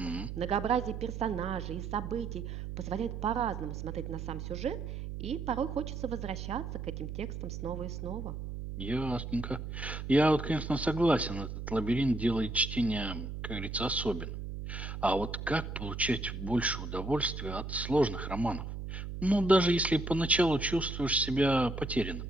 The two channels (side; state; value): right; noise; hum, 7 dB below the sound